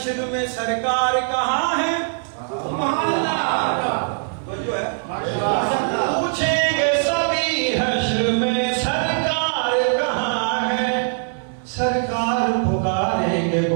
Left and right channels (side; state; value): left; silent; 63 dB below the other